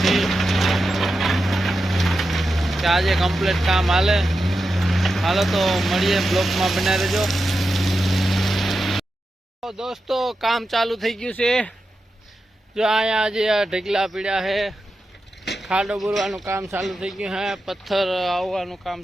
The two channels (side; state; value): both; normal; correlation 0.90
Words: કે આજે કમ્પ્લેટ કામ હાલો તો મળીએ, બ્લોકમાં બનાવી દેજો. દોસ્તો કામ ચાલુ થઈ ગયું છે. જો અહીંયા આજે ઢગલા પીડ્યા છે. ખાડો બોરવાનું કામ ચાલુ થઈ ગયું છે. પથ્થર આવવાનું કામ